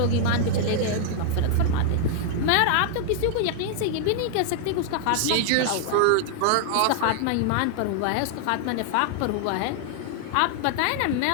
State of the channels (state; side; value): different; both; correlation 0.00